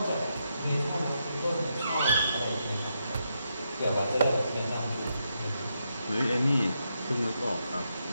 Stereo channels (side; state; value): both; inverted; correlation -0.82